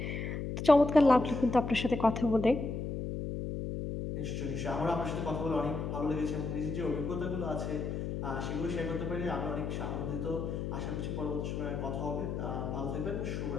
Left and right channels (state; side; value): noise; left; hum, 3 dB below the sound